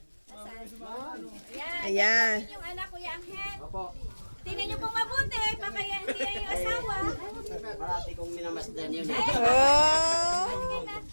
Yan. Ayan. Yung anak ko, yung Angel. Tingnan niyo pong mabuti, baka yan hindi yan yung asawa. Parati kong minamasdan yun. Oh! Sige na.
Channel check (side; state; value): both; inverted; correlation -1.00